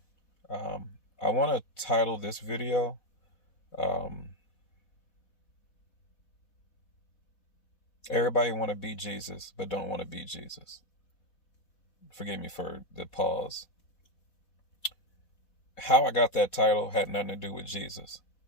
I want to title this video, Everybody Want to Be Jesus, but Don't Want to Be Jesus. Forgive me for the pause. How I got that title had nothing to do with Jesus,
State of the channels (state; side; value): late; right; 4.1 ms